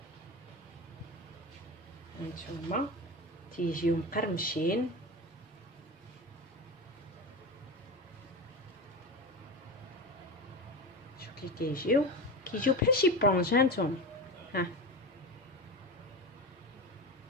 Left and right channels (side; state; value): both; normal; correlation 0.24